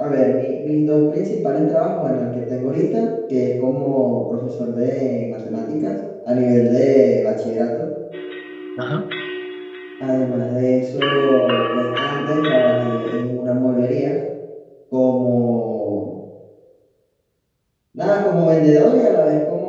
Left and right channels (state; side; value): identical; both; correlation 1.00